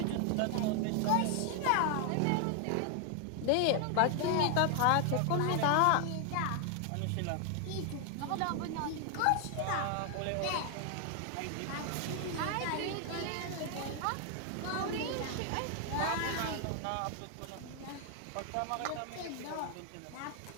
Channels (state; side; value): different; both; correlation 0.00